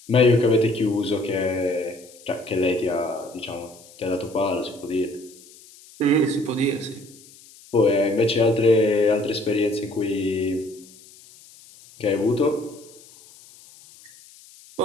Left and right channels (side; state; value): left; noise; hiss, 23 dB below the sound